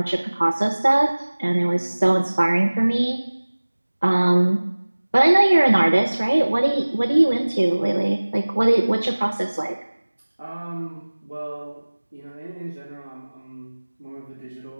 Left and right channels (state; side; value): inverted; both; correlation -1.00